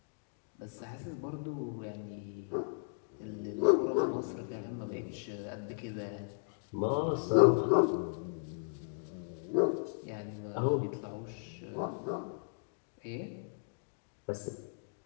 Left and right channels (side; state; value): right; silent; digital silence